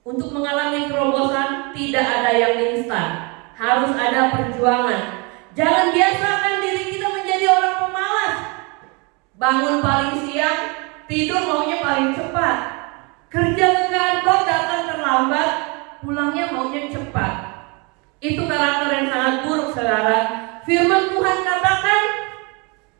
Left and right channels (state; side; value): quieter; left; 30.4 dB